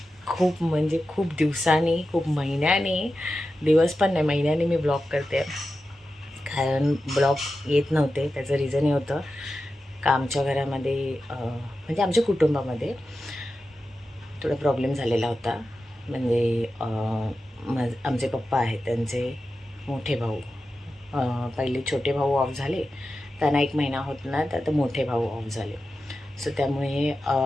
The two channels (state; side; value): normal; both; correlation 0.92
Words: म्हणजे खूप दिवसांनी, खूप महिन्याने, दिवस पण नाही महिन्याने मी ब्लॉग करते. कारण ब्लॉग येत नव्हते. त्याचं रिझन हे होतं का आमच्या घरामध्ये म्हणजे आमच्या कुटुंबामध्ये थोडा प्रॉब्लेम झालेला होता. म्हणजे आमचे पप्पा आहेत, त्यांचे मोठे भाऊ, पहिले छोटे भाऊ ऑफ झाले, त्यांना 1 महिना होत ना, तर आता मोठे भाऊ ऑफ झाले. सो त्यामुळे